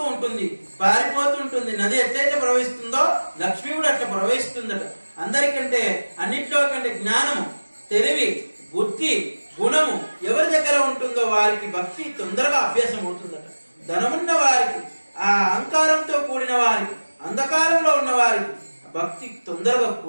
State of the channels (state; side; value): inverted; both; correlation -1.00